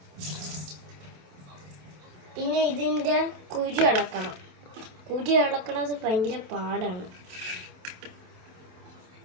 പിന്നെ ഇതിൻ്റെ കുരു ഇളക്കണം. കുരു ഇളക്കണത് ഭയങ്കര പാടാണ്.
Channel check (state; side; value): late; left; 27 ms